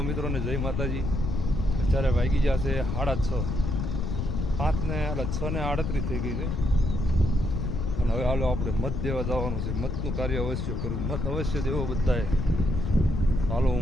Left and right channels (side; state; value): left; noise; rumble, 1 dB below the sound